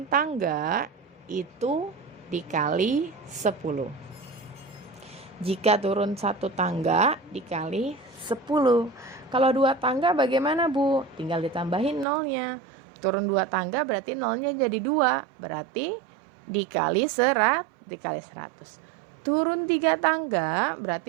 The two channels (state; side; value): drops out; left; at 12.1 s